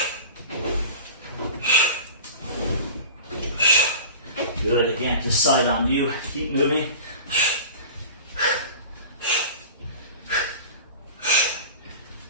Good, again, just side on you, keep moving.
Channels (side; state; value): both; inverted; correlation -0.37